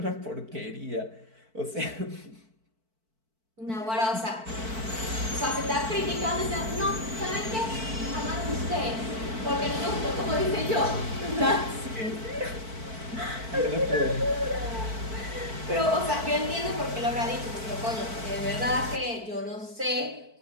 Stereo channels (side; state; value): left; late; 4.5 ms